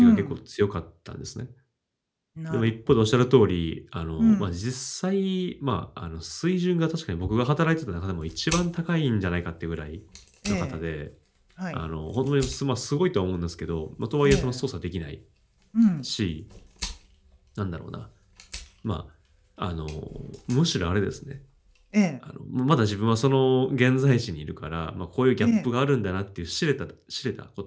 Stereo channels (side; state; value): both; identical; correlation 1.00